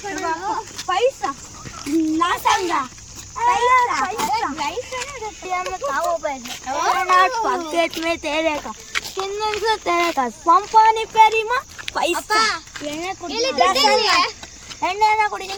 पॉकेट में तेरे का किन्नन से तेरे का पंपानी पेरी मा पैसा ಎಣ್ಣೆನ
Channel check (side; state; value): left; noise; rumble, 28 dB below the sound